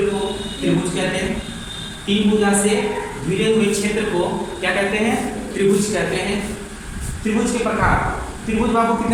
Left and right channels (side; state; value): both; identical; correlation 1.00